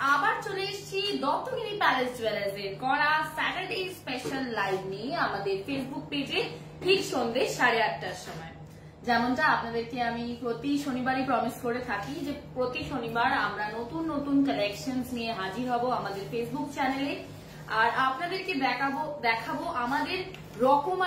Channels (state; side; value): identical; both; correlation 1.00